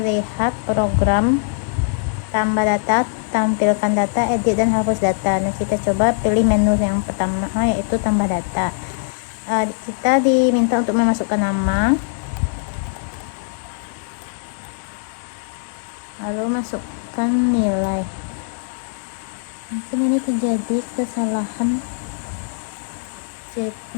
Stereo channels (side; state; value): right; silent; digital silence